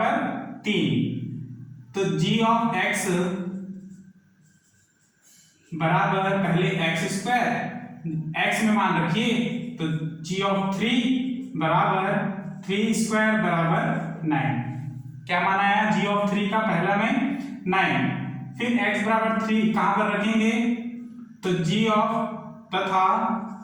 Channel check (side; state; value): both; identical; correlation 1.00